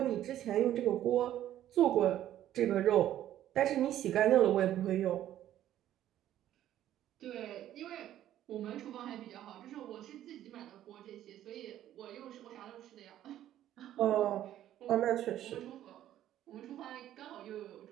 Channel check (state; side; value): quieter; left; 12.2 dB